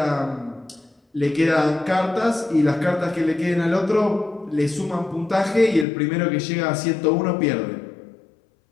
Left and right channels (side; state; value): right; drops out; at 5.9 s